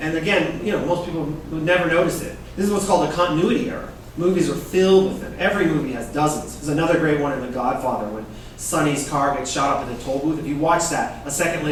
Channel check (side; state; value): both; identical; correlation 1.00